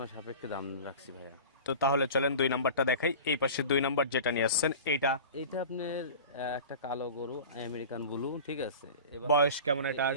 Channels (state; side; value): inverted; both; correlation -0.36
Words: সাপেক্ষে দাম রাখছি ভাইয়া। তো তাহলে চলেন 2 নাম্বারটা দেখাই। এই পাশে 2 নাম্বার যেটা নিয়ে আসছেন এইটা। এটা আপনার একটা কালো গরু, আমেরিকান ব্লু, ঠিক আছে। বয়স কেমন এটা?